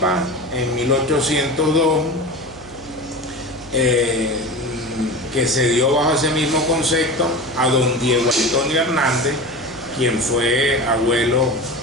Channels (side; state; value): right; noise; hum, 21 dB below the sound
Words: en 1802, que se dio bajo ese mismo concepto a don Diego Antonio Hernández, quien fue abuelo